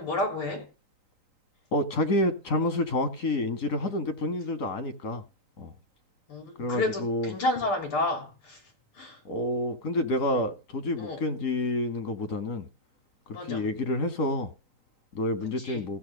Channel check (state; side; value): late; right; 3.9 ms